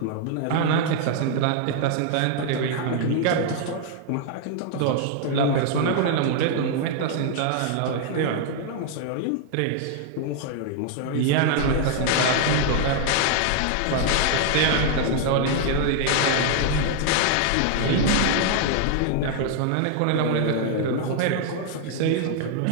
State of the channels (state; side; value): different; both; correlation 0.00